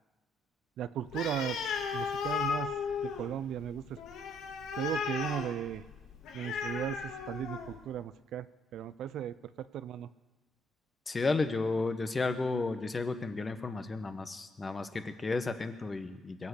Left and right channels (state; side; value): normal; both; correlation 0.70